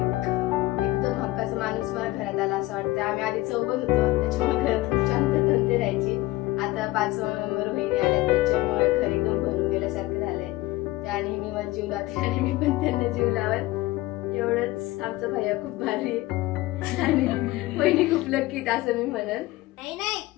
एकदम हक्काचा माणूस मला घरात आला असं वाटतं। आम्ही आधी चौघ होतो, त्याच्यामुळे घरात खूप शांतता राहायची। आता 5वा मेंबर बहिणी आल्या, त्याच्यामुळे घर एकदम भरून गेल्यासारखं झालंय। त्या नेहमी मला जीव लावते आणि मी पण त्यांना जीव लावत। एवढंच आमचा भैया खूप भारी आणि बहिणी खूप लक्की असं मी म्हणेन। नाही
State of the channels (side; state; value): right; quieter; 18.5 dB